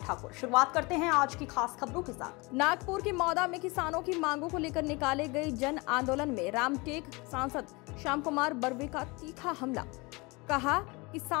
शुरुआत करते हैं आज की खास खबरों के साथ। नागपुर के मौदा में किसानों की मांगों को लेकर निकाले गए जन आंदोलन में रामटेक सांसद श्याम कुमार बर्वे का तीखा हमला। कहा,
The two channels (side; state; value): right; quieter; 26.1 dB